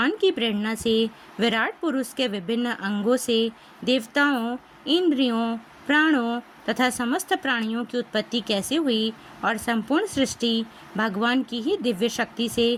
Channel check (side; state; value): both; identical; correlation 1.00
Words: की प्रेरणा से विराट पुरुष के विभिन्न अंगों से देवताओं, इंद्रियों, प्राणों तथा समस्त प्राणियों की उत्पत्ति कैसे हुई और संपूर्ण सृष्टि भगवान की ही दिव्य शक्ति से